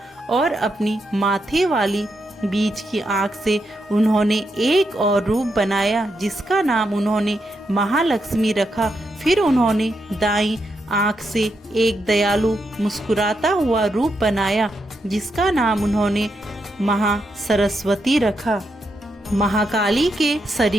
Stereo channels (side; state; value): both; normal; correlation 0.82